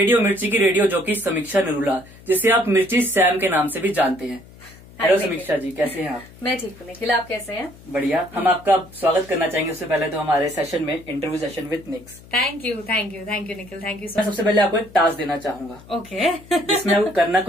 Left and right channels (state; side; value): noise; left; hum, 22 dB below the sound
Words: मिर्ची की रेडियो जॉकी समीक्षा नरूला, जिसे आप मिर्ची सैम के नाम से भी जानते हैं। हेलो समीक्षा जी, कैसे हैं आप। मैं ठीक हूँ निखिल, आप कैसे हैं। बढ़िया। हम आपका स्वागत करना चाहेंगे उससे पहले तो हमारे सेशन में, interview session with Nicks. Thank you Nikhil, thank you. मैं सबसे पहले आपको एक टास्क देना चाहूंगा। ओके। जिसमें आपको करना